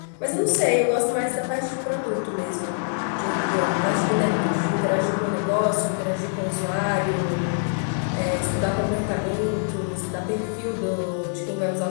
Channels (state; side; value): silent; right; digital silence